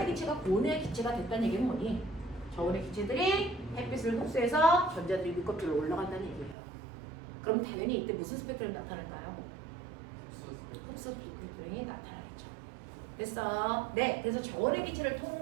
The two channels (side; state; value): left; drops out; at 6.6 s